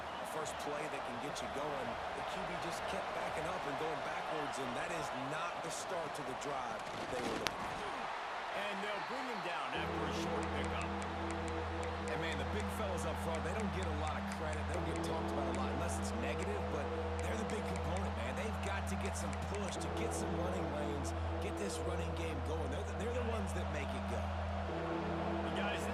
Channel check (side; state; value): both; identical; correlation 1.00